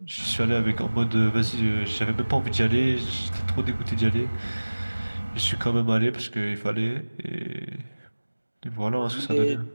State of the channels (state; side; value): inverted; both; correlation -1.00